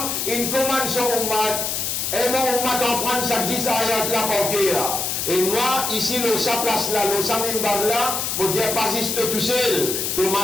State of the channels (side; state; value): left; noise; hiss, 1 dB below the sound